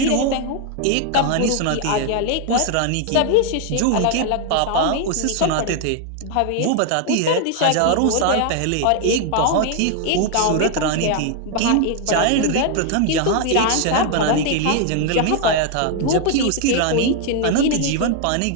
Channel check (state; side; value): different; both; correlation 0.00